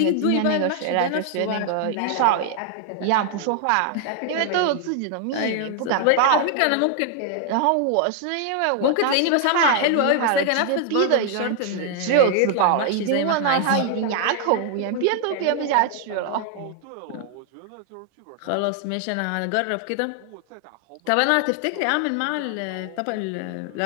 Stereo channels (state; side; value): different; both; correlation 0.00